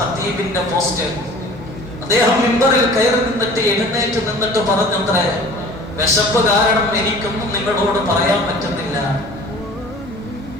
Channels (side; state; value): both; normal; correlation 0.45